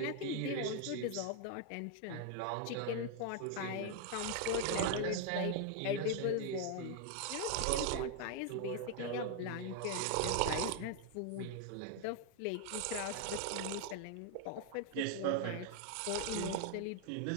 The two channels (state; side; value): different; both; correlation 0.01